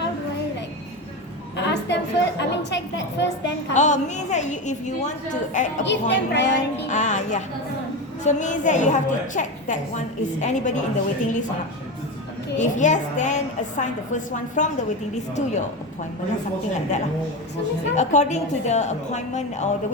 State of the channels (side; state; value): both; normal; correlation 0.20